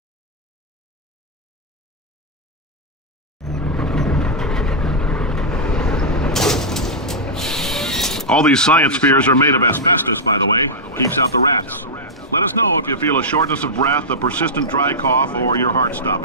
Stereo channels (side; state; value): both; normal; correlation -0.08